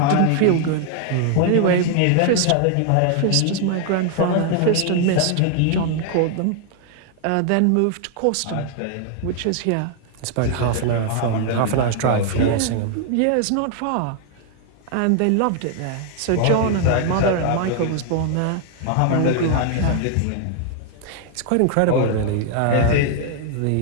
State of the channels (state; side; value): different; both; correlation 0.00